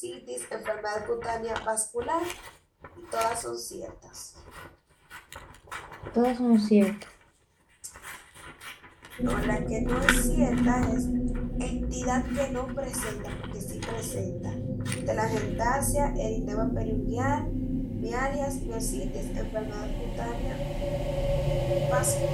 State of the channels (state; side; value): identical; both; correlation 1.00